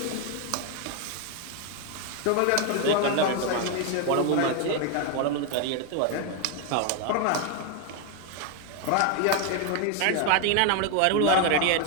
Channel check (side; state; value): both; different; correlation 0.01